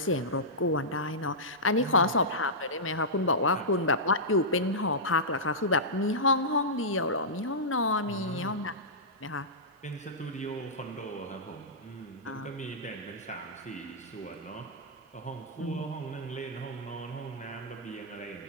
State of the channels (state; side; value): normal; both; correlation -0.15